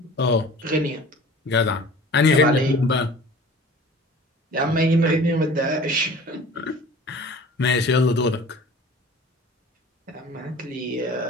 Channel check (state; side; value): normal; both; correlation 0.43